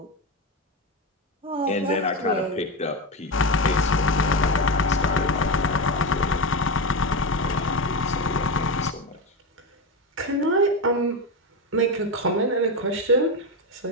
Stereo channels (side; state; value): both; normal; correlation 0.14